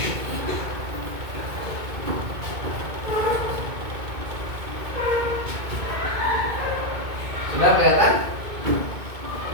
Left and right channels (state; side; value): late; left; 2.2 ms